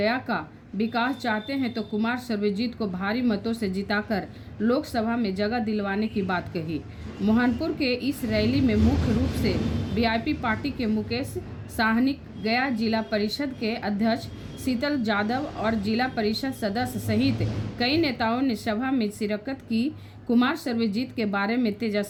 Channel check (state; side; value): identical; both; correlation 1.00